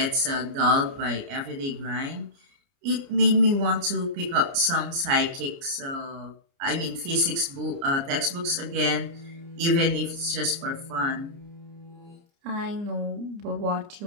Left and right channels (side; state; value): left; late; 29 ms